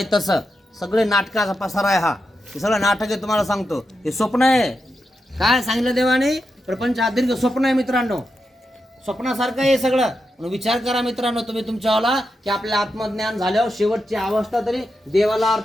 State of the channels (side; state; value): both; normal; correlation 0.87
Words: तसं. सगळे नाटकाचा पसारा आहे हा. हे सगळं नाटक आहे तुम्हाला सांगतो. हे स्वप्न आहे. काय सांगितलं देवाने प्रपंच आदीर्घ स्वप्न आहे मित्रांनो. स्वप्नासारखं आहे सगळं. म्हणून विचार करा मित्रांनो तुम्ही तुमच्यावाला की आपल्या आत्मज्ञान झाल्यावर शेवटची अवस्था तरी देवाला